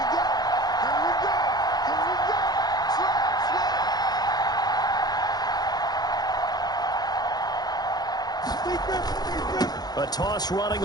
A toss running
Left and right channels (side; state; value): right; late; 0.19 ms